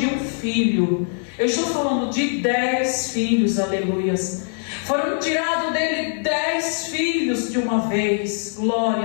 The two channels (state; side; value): silent; right; 64 dB below the other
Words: um filho, eu estou falando de 10 filhos, aleluias, foram tirados dele 10 filhos de uma vez,